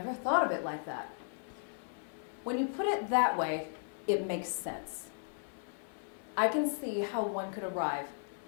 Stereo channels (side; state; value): right; silent; 54 dB below the other